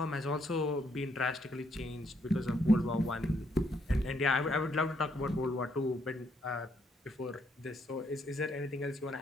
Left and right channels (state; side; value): normal; both; correlation 0.73